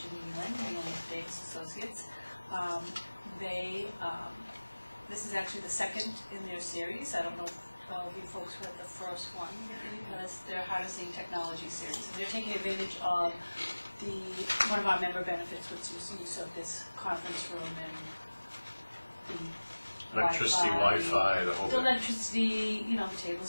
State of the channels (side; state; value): both; inverted; correlation -1.00